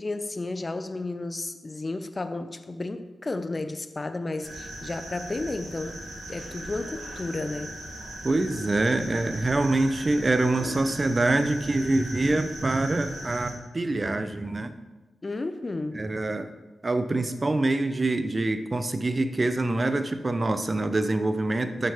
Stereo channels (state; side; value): normal; both; correlation 0.95